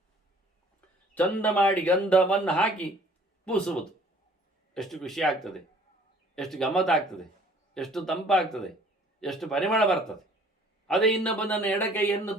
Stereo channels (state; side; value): normal; both; correlation 0.55